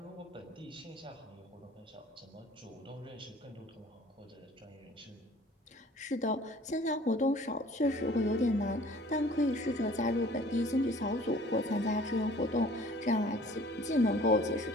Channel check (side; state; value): both; normal; correlation 0.51